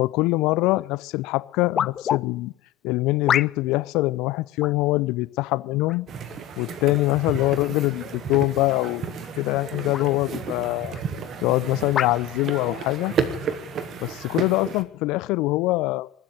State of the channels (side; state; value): right; quieter; 10.9 dB